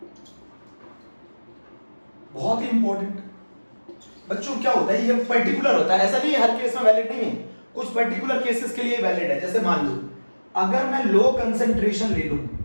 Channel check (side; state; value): both; inverted; correlation -1.00